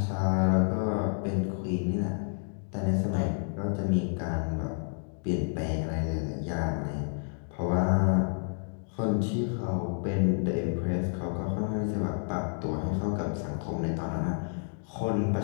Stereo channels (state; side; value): silent; right; 58 dB below the other